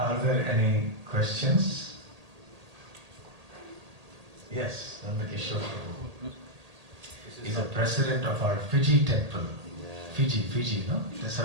there any questions? Yes, Nandakishore Prabhu. He's the president of our Fiji temple. Fiji, no? That's how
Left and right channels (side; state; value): left; late; 1.8 ms